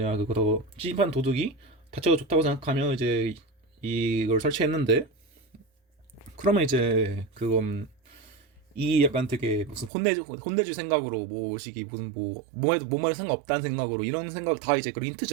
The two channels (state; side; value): drops out; left; at 9.9 s